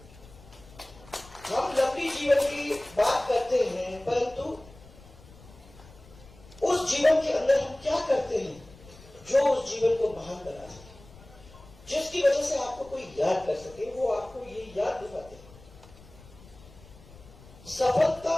हम लंबी जीवन की बात करते हैं, परंतु उस जीवन के अंदर हम क्या करते हैं जो उस जीवन को महान बना सके, जिसकी वजह से आपको कोई याद कर सके, वो आपको ये याद दिलाते हैं।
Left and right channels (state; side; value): noise; left; rumble, 22 dB below the sound